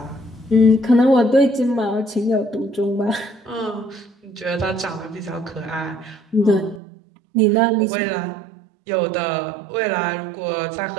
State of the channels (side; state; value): left; drops out; at 6.8 s